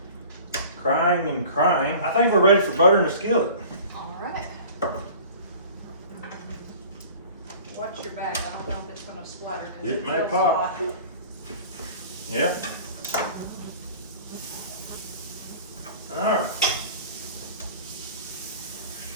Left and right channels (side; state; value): both; inverted; correlation -0.43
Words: and crying. I think we're ready for butter in the skillet. All right. Watch your back. I don't know if it's going to splatter. It may pop. Yeah. All right.